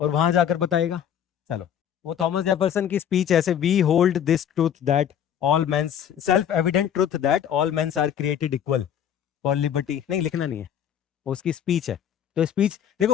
और वहां जाकर बताएगा। चलो, वो थॉमस जेफरसन की स्पीच ऐसे, we hold this truth that all mens, self evident truth that all mens are created equal for liberty, नहीं लिखना नहीं है, उसकी स्पीच है। तो स्पीच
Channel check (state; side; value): quieter; right; 9.2 dB